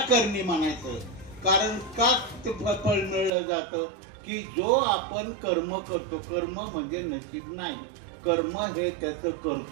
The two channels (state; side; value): drops out; left; at 3.3 s